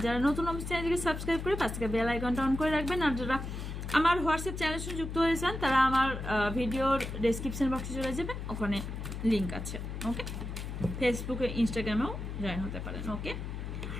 যারা নতুন আমার চ্যানেলকে সাবস্ক্রাইব করে পাশে থেকে বেল আইকনটা অন করে রাখবেন। আর যারা আমার হোয়াটসঅ্যাপ চ্যানেলের সঙ্গে যুক্ত হয়েছেন তারা আমার ভিডিওর ডেসক্রিপশন বক্সে চলে যাবেন, ওখানে লিঙ্ক আছে। ওকে, ফেসবুকে ইনস্টাগ্রামেও জয়েন হতে পারেন। ওকে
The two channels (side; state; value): left; noise; hum, 6 dB below the sound